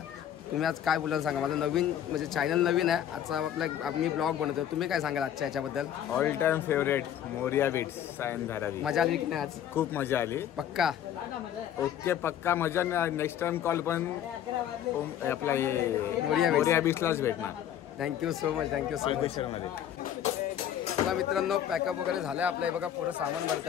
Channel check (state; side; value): quieter; right; 10.3 dB